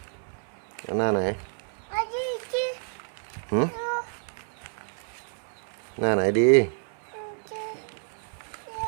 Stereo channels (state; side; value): silent; left; digital silence